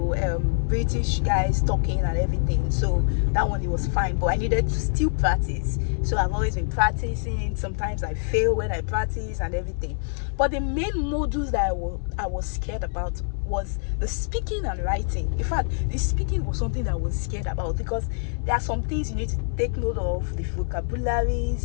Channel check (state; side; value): silent; right; 62 dB below the other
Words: British guys talking and everything. So that one, it was fine, but I needed to still practice. So I've always been practicing. Sometimes I fail when I practice and everything. But the main modules that I was scared about was the speaking and writing. In fact, the speaking was something that I was scared about because there are some things you need to take note of, the